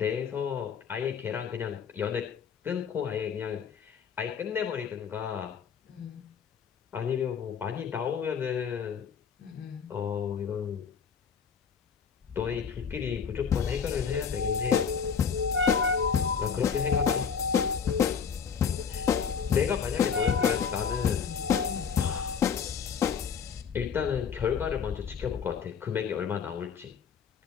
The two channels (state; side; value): quieter; right; 6.7 dB